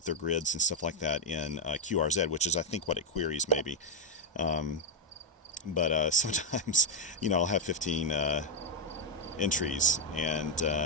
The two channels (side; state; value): both; normal; correlation 0.01